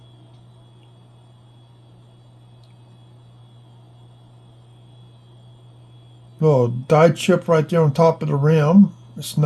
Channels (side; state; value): both; identical; correlation 1.00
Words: Little die chip right there on top of the rim. It's